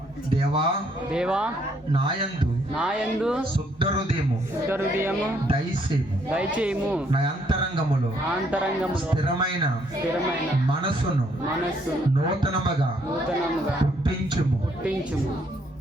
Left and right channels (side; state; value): both; normal; correlation 0.69